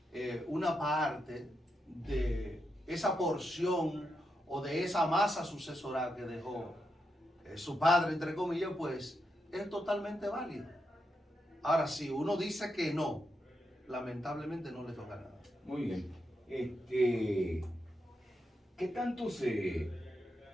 una parte de esa porción o de esa masa sucesoral que dejó su padre, entre comillas, pues es totalmente válido. Ahora, si uno dice que no, lamentablemente no le toca nada. Muy bien. ¿Qué tanto se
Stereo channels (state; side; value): normal; both; correlation 0.84